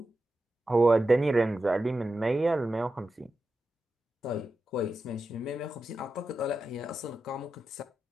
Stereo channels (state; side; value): normal; both; correlation 0.90